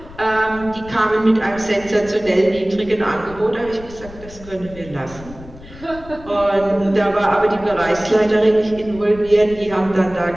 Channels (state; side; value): noise; left; rumble, 17 dB below the sound